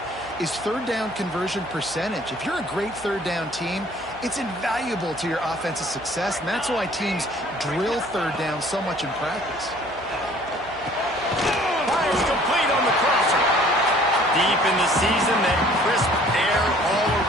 is 3rd down conversion percentage. If you're a great 3rd down team, it's invaluable to your offensive success, and that's why teams drill 3rd down so much in practice. Fires complete on the crosser. Deep in the season, that crisp air all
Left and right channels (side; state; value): right; noise; hum, 20 dB below the sound